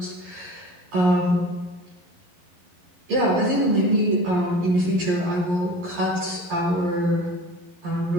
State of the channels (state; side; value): late; left; 11 ms